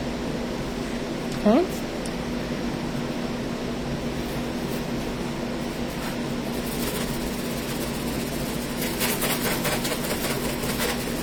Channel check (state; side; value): identical; both; correlation 1.00